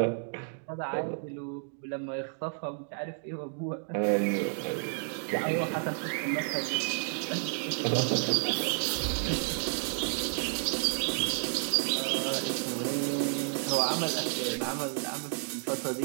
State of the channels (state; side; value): silent; left; digital silence